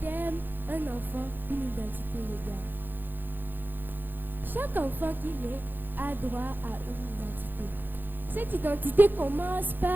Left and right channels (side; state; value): left; late; 0.092 ms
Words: thème « Un enfant, une identité légale ». Chaque enfant qui naît a droit à une identité. Cette identité commence